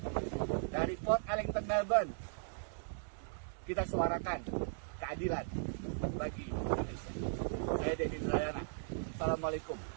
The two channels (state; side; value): silent; left; digital silence